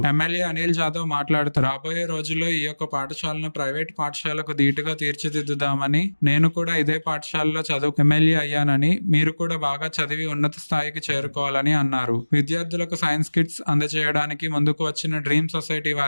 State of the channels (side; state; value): both; inverted; correlation -1.00